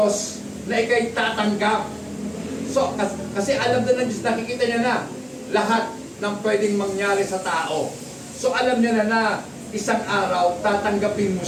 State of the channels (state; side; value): identical; both; correlation 1.00